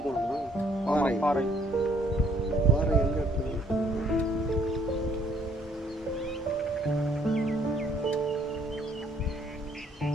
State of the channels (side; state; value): both; normal; correlation 0.64